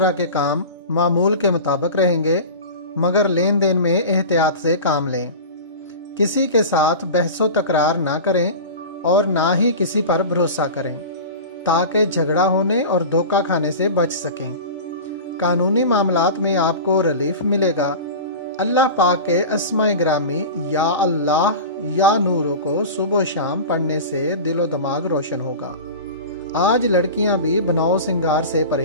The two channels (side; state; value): both; inverted; correlation -0.32